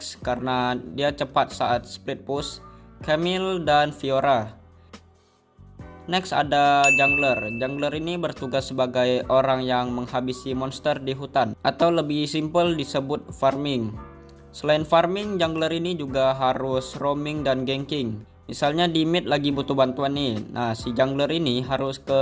karena dia cepat saat split push, Camille dan Fiora. Next ada jungler. Jungler ini bertugas sebagai orang yang menghabisi monster di hutan, atau lebih simpel disebut farming. Selain farming, jungler ini juga harus roaming dan ganking. Misalnya di mid lagi butuh bantuan nih. Nah, si jungler ini harus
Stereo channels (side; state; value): both; identical; correlation 1.00